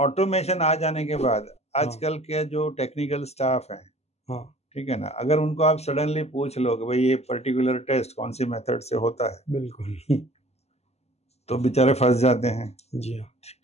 आ जाने के बाद आजकल के जो टेक्निकल स्टाफ हैं, हाँ. ठीक है ना, अगर उनको आप सडनली पूछ लो कि भाई ये पर्टिकुलर टेस्ट कौन सी मेथड से होता है, बिल्कुल. तो बेचारे फंस जाते हैं. जी हाँ.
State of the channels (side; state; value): right; late; 0.30 ms